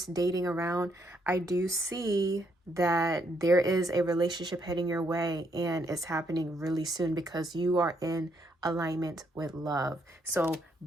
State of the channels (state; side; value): normal; both; correlation 0.74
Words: dating around, I do see that there is a relationship heading your way, and it's happening really soon because you are in alignment with love. So